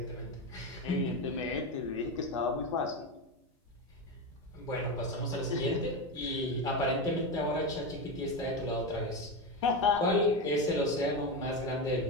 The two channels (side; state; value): both; normal; correlation 0.15